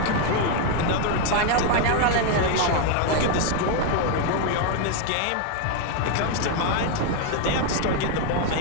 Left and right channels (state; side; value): different; both; correlation 0.01